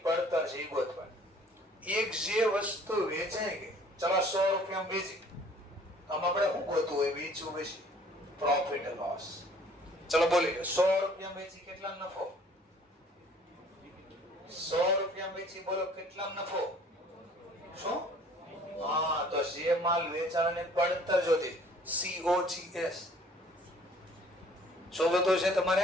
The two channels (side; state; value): both; normal; correlation 0.55